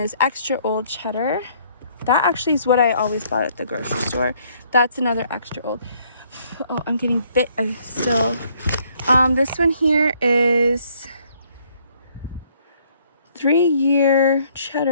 extra old cheddar. That actually is what I always bought at the grocery store. That's another extra old. Oh, I'm getting bit still. This one here is 3-year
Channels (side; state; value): both; inverted; correlation -0.65